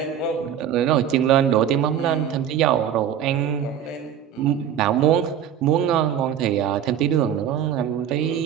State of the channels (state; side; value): quieter; left; 9.3 dB